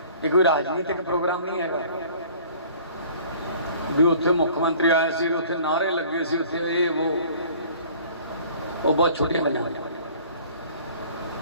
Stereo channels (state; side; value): inverted; both; correlation -0.50